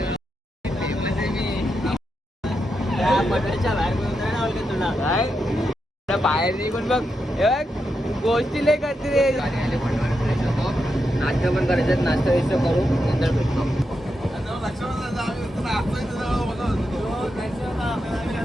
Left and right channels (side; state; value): both; normal; correlation 0.85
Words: बाहेर नाही पण बघ गोष्टी लय करते रे. फ्रेश होतो, नाश्ता पण करायचं. नाश्ता वैश्ता करू नंतर भेटतो.